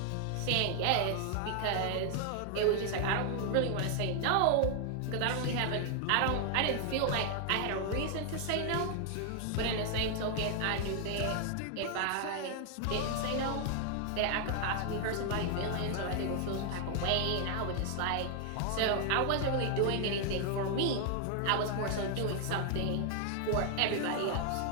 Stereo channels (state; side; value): different; both; correlation 0.00